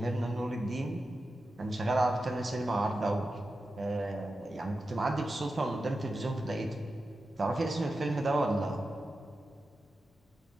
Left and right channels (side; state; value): both; normal; correlation 0.91